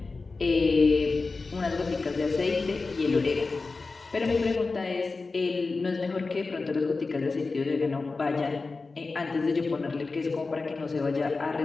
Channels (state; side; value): quieter; right; 3.9 dB